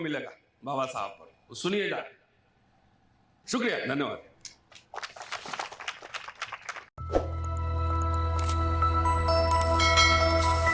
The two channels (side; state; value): both; identical; correlation 1.00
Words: बाबा साहब पर, सुनिए जाके। शुक्रिया, धन्यवाद।